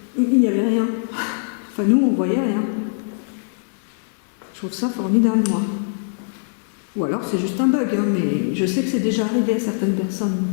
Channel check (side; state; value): right; silent; digital silence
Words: il n'y avait rien. Enfin nous on voyait rien. Je trouve ça formidable moi. Ou alors c'est juste un bug, hein, mais je sais que c'est déjà arrivé à certaines personnes.